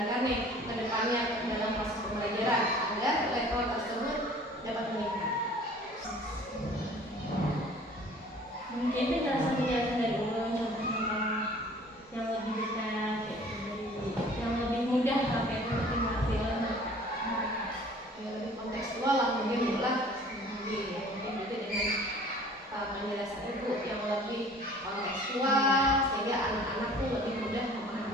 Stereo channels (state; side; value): normal; both; correlation 0.50